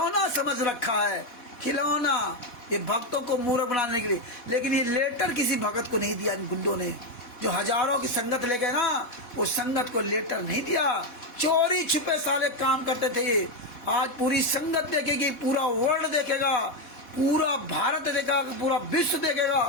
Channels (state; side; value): late; right; 4.1 ms